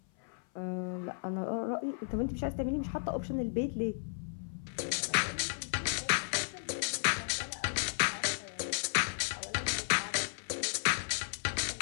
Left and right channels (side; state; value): right; silent; 55 dB below the other